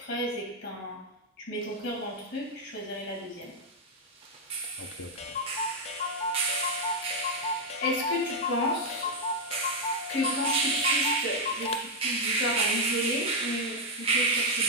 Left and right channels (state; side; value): normal; both; correlation -0.01